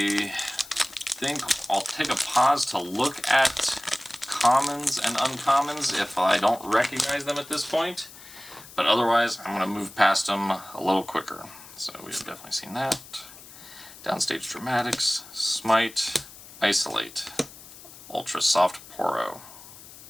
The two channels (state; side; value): noise; left; hiss, 18 dB below the sound